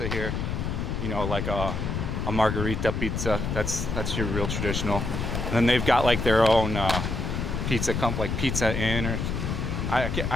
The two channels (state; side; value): noise; left; rumble, 2 dB below the sound